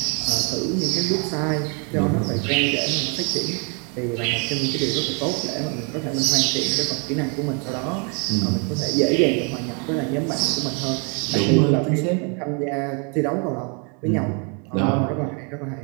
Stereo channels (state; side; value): quieter; left; 36.5 dB